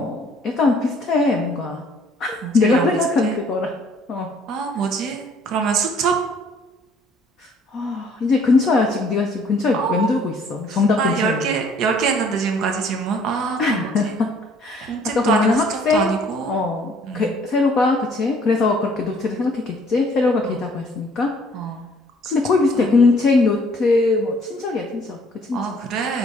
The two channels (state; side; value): normal; both; correlation 0.60